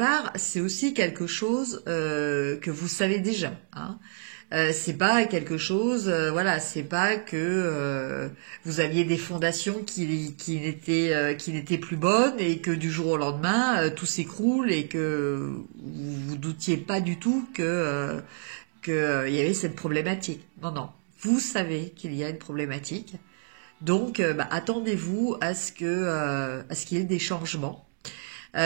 c'est aussi quelque chose que vous savez déjà. Hein. C'est pas quelque chose, voilà, c'est pas que vous aviez des fondations qui n'étaient plus bonnes et que du jour au lendemain tout s'écroule et que vous doutiez pas du tout que il y avait cette problématique. Non, non, vous savez qu'il y a une problématique. Donc, attendez-vous à ce qu'il y ait des changements,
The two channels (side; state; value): left; silent; digital silence